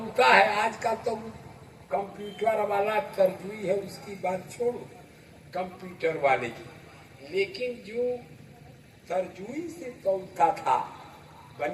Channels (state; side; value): identical; both; correlation 1.00